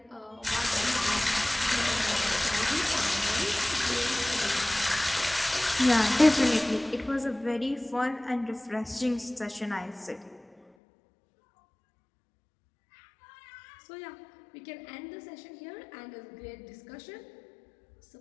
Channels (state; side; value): drops out; right; at 10.6 s